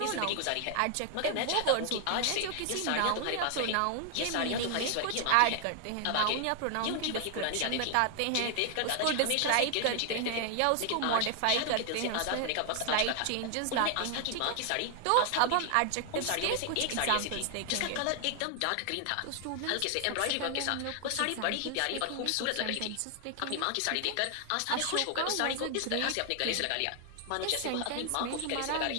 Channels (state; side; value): different; both; correlation 0.00